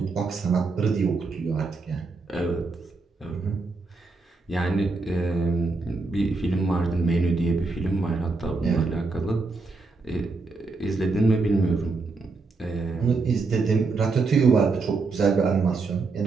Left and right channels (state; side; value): quieter; left; 3.9 dB